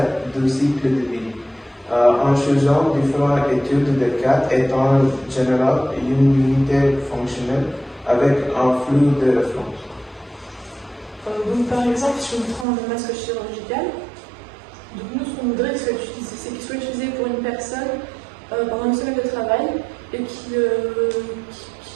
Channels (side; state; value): left; drops out; at 12.7 s